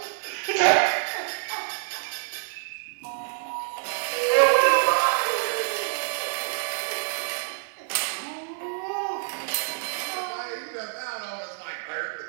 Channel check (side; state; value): left; silent; 60 dB below the other